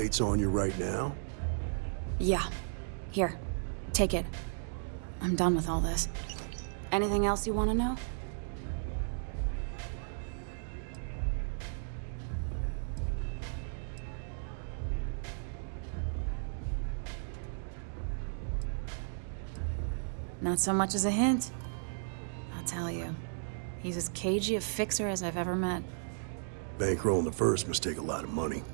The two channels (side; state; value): left; silent; digital silence